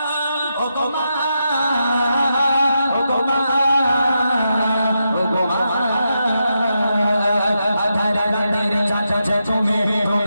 ও বাবা ও বাবা ও বাবা আধার রাতের চাচা তুমি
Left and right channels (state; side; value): inverted; both; correlation -0.85